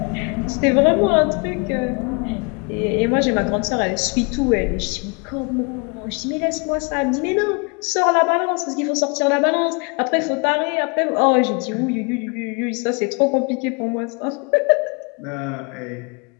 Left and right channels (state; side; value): quieter; right; 32.8 dB